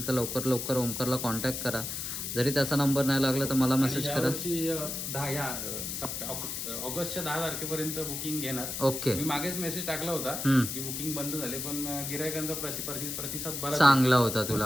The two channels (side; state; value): left; noise; hiss, 4 dB below the sound